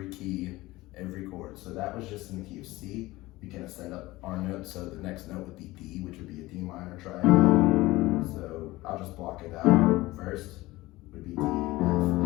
key, every chord. So that was just in the key of C. We can ascend up our note, so the next note would be D, which would be a D minor triad. So I'll just block it out. First would be D, F, A,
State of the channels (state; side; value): quieter; right; 19.2 dB